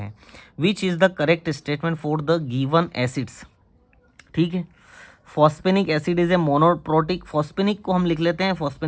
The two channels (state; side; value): identical; both; correlation 1.00